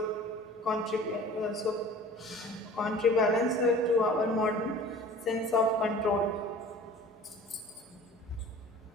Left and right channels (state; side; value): normal; both; correlation 0.44